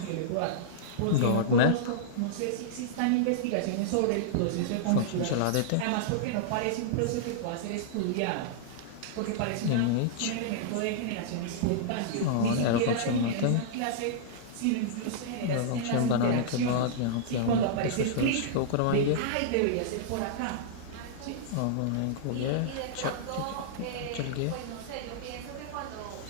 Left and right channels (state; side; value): different; both; correlation -0.02